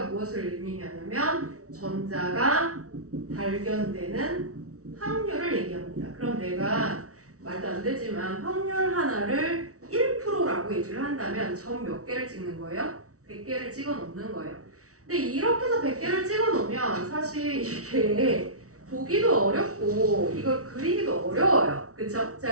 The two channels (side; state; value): left; late; 0.65 ms